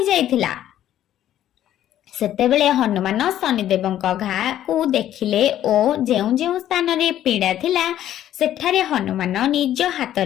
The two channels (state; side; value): quieter; right; 11.9 dB